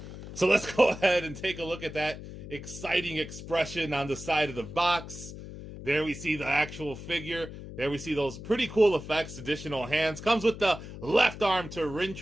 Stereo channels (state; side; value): noise; left; hum, 12 dB below the sound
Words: So let's go ahead and take a look at that exciting expression on the side of the box. There we see the actual figure. There we see those pretty cool effects, additional hands. Comes with the left arm to